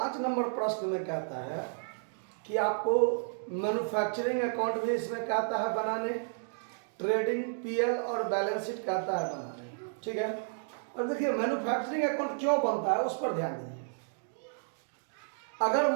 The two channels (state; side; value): silent; left; digital silence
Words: नंबर प्रश्न में कहता है कि आपको मैन्युफैक्चरिंग अकाउंट भी इसमें कहता है बनाने, ट्रेडिंग पीएल और बैलेंस शीट कहता है बनाने। ठीक है, और देखिए मैन्युफैक्चरिंग अकाउंट क्यों बनता है उस पर ध्यान दीजिए। अगर